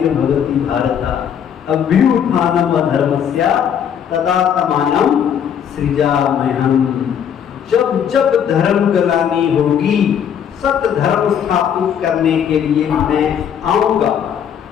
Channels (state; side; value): quieter; right; 8.5 dB